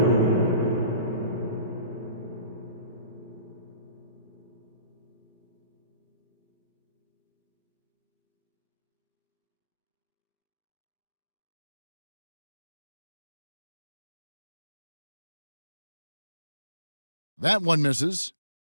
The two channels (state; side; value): inverted; both; correlation -0.53